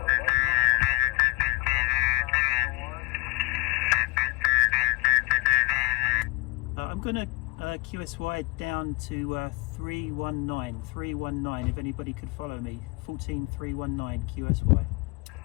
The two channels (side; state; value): right; quieter; 27.3 dB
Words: I'm going to QSY down to 319 if anybody could follow me. 14319 QSY.